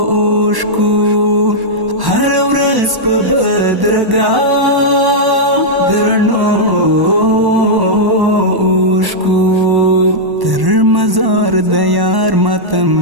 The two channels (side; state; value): left; late; 1.1 ms